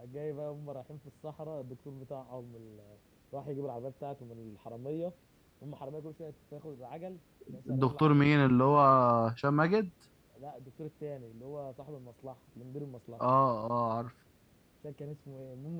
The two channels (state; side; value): identical; both; correlation 1.00